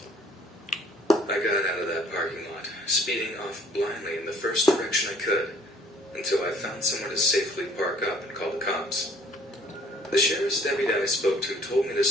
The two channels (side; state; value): both; normal; correlation 0.58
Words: I got out of that parking lot, speeding off blindly in the first direction I could, until I found somewhere to safely park up and call the cops. The sheriff's deputy I spoke to told me to